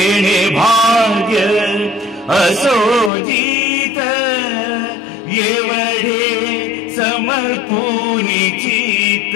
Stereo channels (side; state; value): right; drops out; at 3.1 s